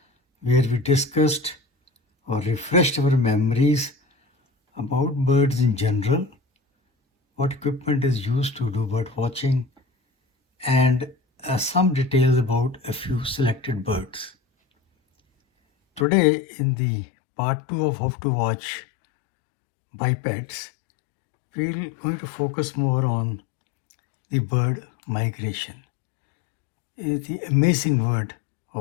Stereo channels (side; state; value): right; drops out; at 16.1 s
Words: where we discussed or refreshed our memories about birds in general, what equipment is used to do bird watching, and some details about a few selected birds. Today, in the part 2 of How to Watch Bipeds, we're going to focus more on the bird migration, the amazing word